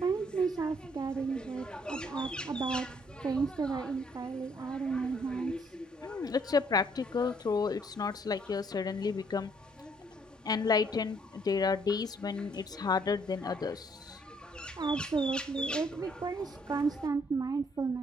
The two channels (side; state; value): both; normal; correlation 0.66